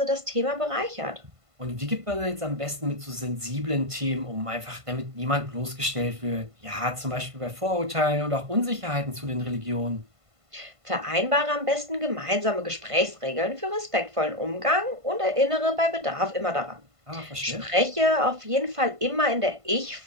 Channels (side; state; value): left; late; 1.5 ms